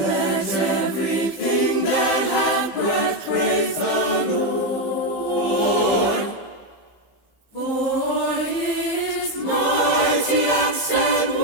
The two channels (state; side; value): late; right; 15 ms